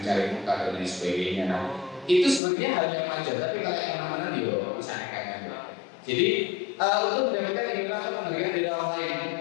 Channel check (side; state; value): right; drops out; at 2.4 s